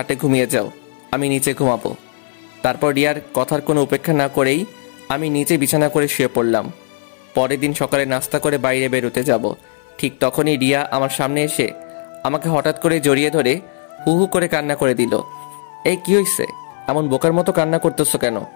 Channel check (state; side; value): silent; right; 58 dB below the other